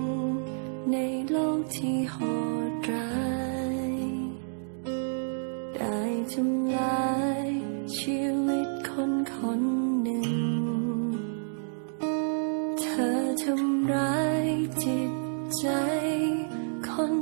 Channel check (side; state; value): left; silent; digital silence